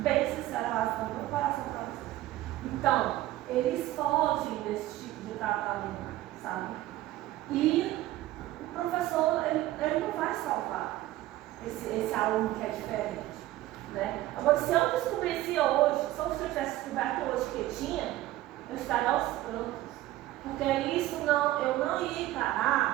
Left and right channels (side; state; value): left; quieter; 15.6 dB